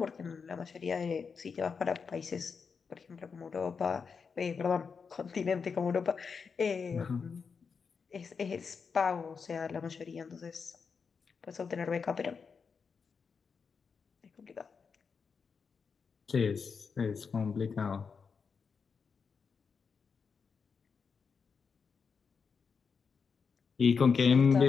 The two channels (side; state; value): right; quieter; 5.6 dB